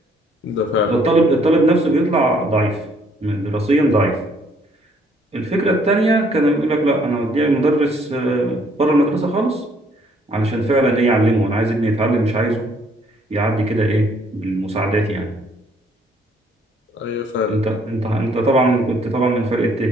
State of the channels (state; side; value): normal; both; correlation 0.65